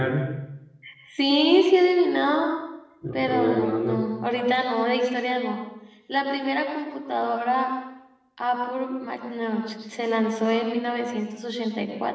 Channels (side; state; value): both; identical; correlation 1.00